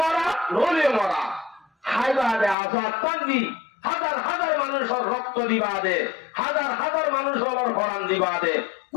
মারা নলে মারা হাইবাদে আজাদ তান্দি হাজার হাজার মানুষের রক্ত দিবাদে হাজার হাজার মানুষের কোরআন দিবাদে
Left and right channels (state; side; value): drops out; right; at 2.6 s